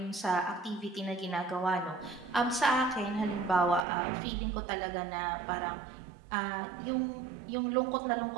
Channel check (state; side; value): drops out; left; at 3.9 s